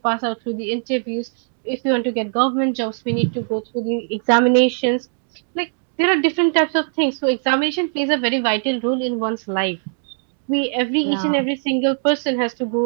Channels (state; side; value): silent; left; digital silence